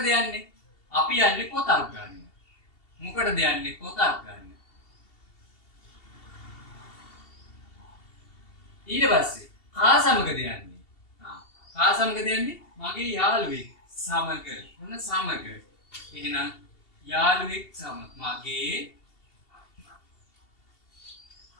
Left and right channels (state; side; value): late; right; 2.7 ms